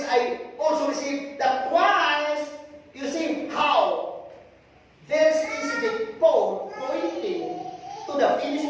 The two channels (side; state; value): both; identical; correlation 1.00